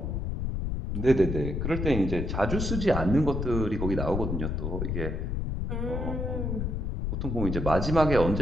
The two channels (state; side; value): noise; left; rumble, 2 dB below the sound